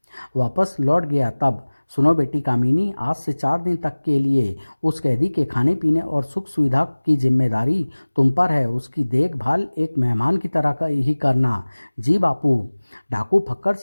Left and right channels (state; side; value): inverted; both; correlation -1.00